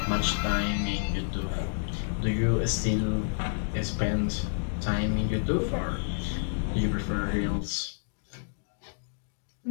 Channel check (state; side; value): silent; right; digital silence